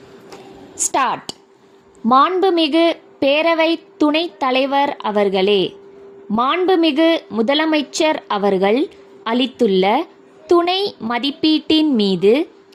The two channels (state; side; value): identical; both; correlation 1.00